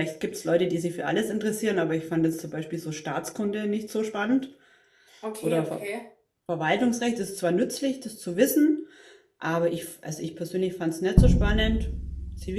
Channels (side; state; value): both; identical; correlation 1.00